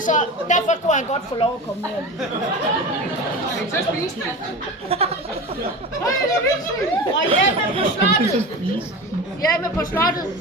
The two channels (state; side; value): normal; both; correlation 0.30